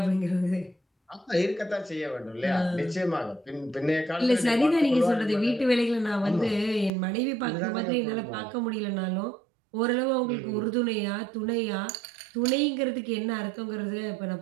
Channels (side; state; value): left; drops out; at 6.9 s